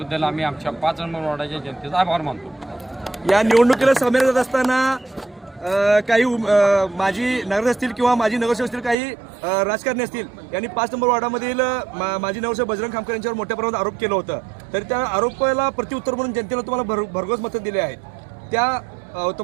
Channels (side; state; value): left; drops out; at 9.0 s